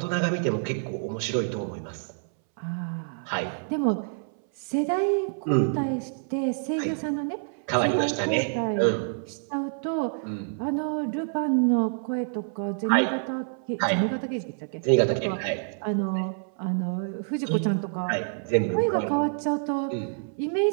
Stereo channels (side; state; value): left; silent; 60 dB below the other